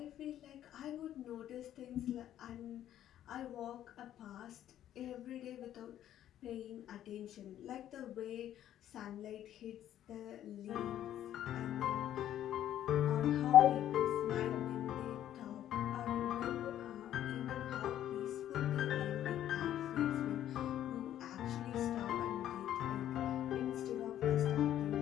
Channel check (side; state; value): right; quieter; 11.6 dB